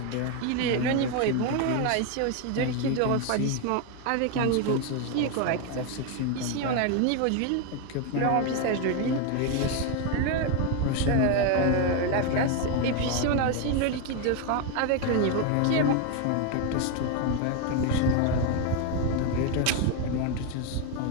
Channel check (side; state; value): both; different; correlation 0.01